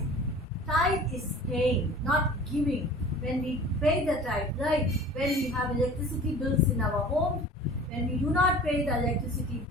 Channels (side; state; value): both; normal; correlation 0.42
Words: is paying, not giving. When we pay the tithe, like when we have electricity bills in our home, when we do not pay the electricity